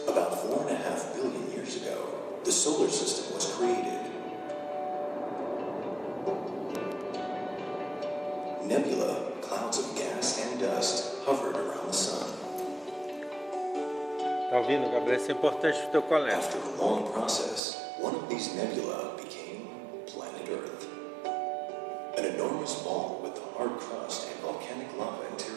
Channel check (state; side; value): drops out; left; at 17.6 s